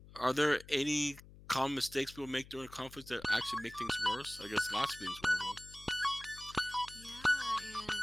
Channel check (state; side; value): noise; left; hum, 19 dB below the sound